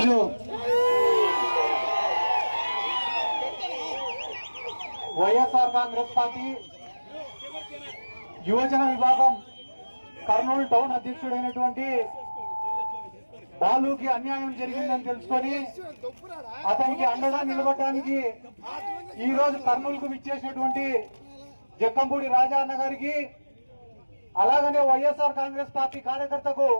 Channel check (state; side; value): inverted; both; correlation -1.00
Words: వైఎస్ఆర్ కాంగ్రెస్ పార్టీ యువజన విభాగం కర్నూలు టౌన్ అధ్యక్షుడైనటువంటి బాలుకి అన్యాయం జరిగిందని తెలుసుకొని అతనికి అండగా నిలబడడానికి ఈ రోజు కర్నూలుకు విచ్చేసినటువంటి జక్కంపూడి రాజా అన్న గారికి, అలాగనే వైఎస్ఆర్ కాంగ్రెస్ పార్టీ కార్యకర్తకు